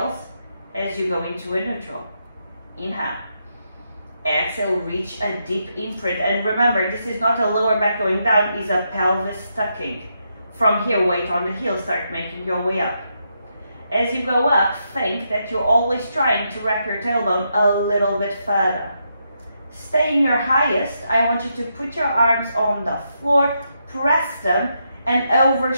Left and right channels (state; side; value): inverted; both; correlation -0.81